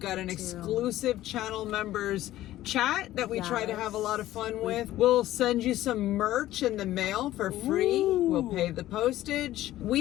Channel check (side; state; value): right; quieter; 14.7 dB